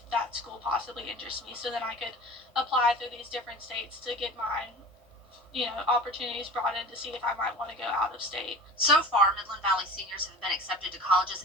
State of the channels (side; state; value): both; normal; correlation 0.37